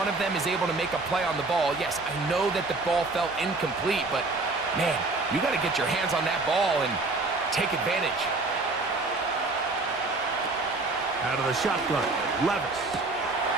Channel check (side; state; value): left; quieter; 3.4 dB